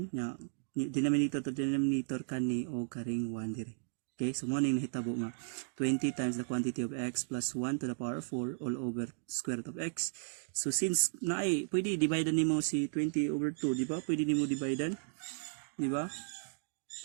nya, denominator to denominator kani og karing 1 dire. Okay, so mo ning nahitabo nga 20 times the quantity of x plus 1 to the power of 4 all over square root of x. So since naay pwede divide nimo si 20 over 2, di ba? Pwede nimo divide, di ba?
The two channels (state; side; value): silent; left; digital silence